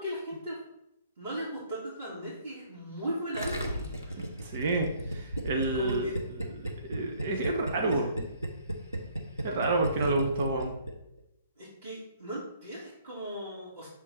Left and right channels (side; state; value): both; inverted; correlation -0.62